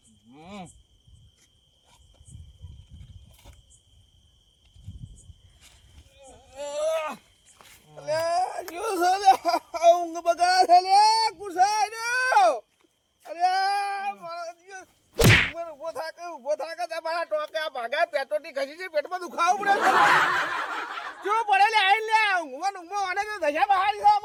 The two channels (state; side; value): identical; both; correlation 1.00